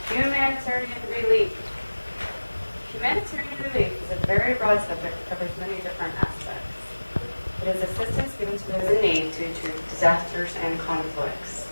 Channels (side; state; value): both; inverted; correlation -1.00